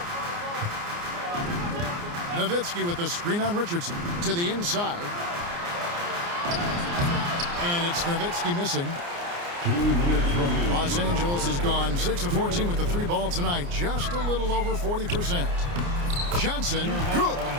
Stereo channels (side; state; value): left; late; 29 ms